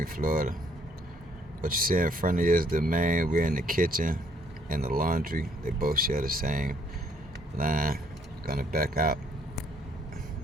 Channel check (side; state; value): both; normal; correlation 0.66